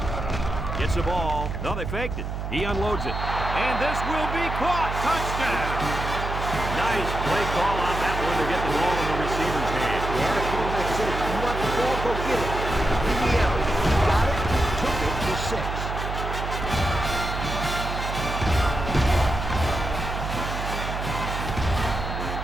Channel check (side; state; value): right; noise; hum, 5 dB below the sound